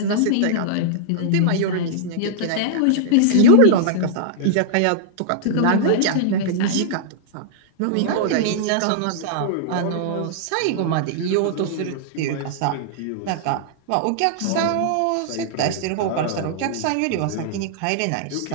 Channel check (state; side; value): different; both; correlation -0.01